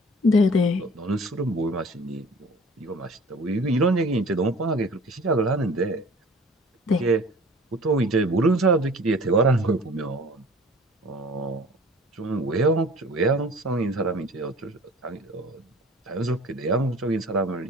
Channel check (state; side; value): normal; both; correlation 0.46